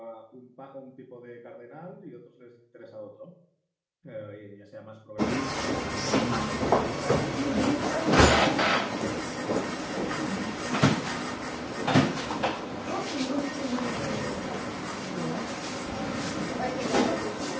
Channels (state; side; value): identical; both; correlation 1.00